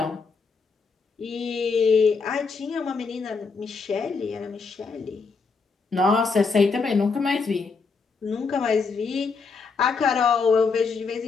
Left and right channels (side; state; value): right; quieter; 4.8 dB